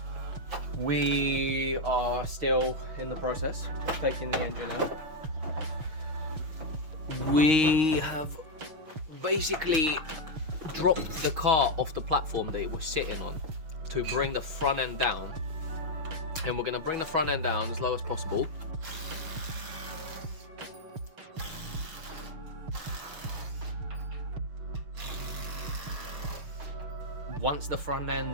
we are still in the process of taking the engine out. We have basically dropped the car off the platform that it was sitting on to bring the front end down, and we're gonna bring the front end down as low as possible. Once the front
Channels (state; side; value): late; left; 6.5 ms